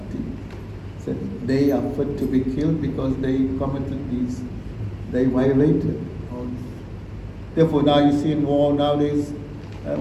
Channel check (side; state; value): both; identical; correlation 1.00